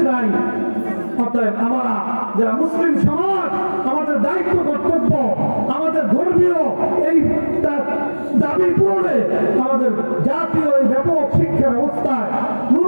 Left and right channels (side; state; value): both; inverted; correlation -1.00